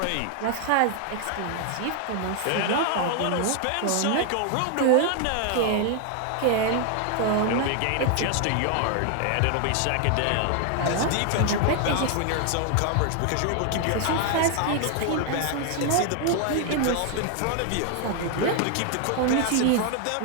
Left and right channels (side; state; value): both; different; correlation 0.00